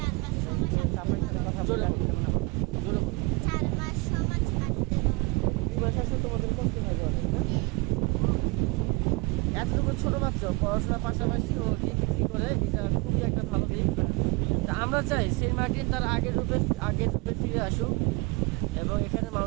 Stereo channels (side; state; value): left; quieter; 26.1 dB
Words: কথা জোরে জোরে বলো। 2 মাস আসলে তোমাদের কষ্ট হয় অনেক, না? এতটুকু ছোট বাচ্চা পড়াশোনার পাশাপাশি ও ডিগ্রি করে, এটা খুবই একটা ভালো দিক। তা আমরা চাই সেন্ট মার্টিন তার আগের রূপে ফিরে আসুক এবং এখানে